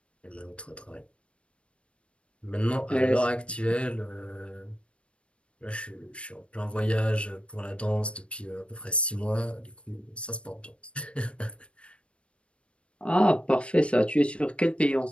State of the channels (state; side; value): late; right; 0.059 ms